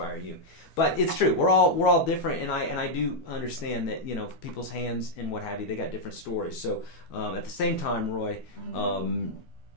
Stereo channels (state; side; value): late; right; 12 ms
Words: you. But it's true. We're all different, and I do understand that people's hands and what have you, they got different stories. So at the same time, Roy,